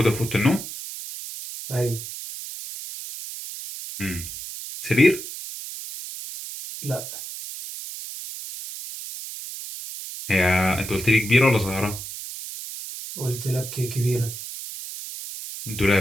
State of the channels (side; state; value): right; noise; hiss, 10 dB below the sound